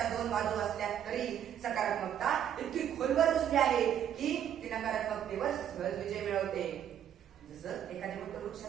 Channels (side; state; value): left; quieter; 9.8 dB